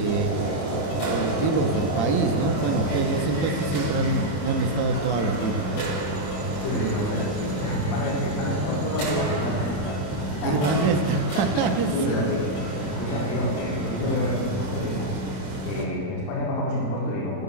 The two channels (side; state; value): right; late; 28 ms